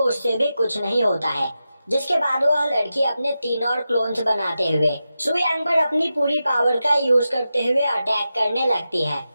भी कुछ नहीं होता है। जिसके बाद वह लड़की अपने 3 और क्लोन्स बनाते हुए सुयांग पर अपनी पूरी पावर का यूज करते हुए अटैक करने लगती है।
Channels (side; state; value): both; inverted; correlation -0.91